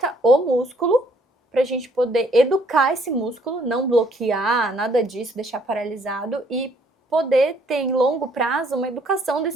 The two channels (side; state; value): both; normal; correlation 0.64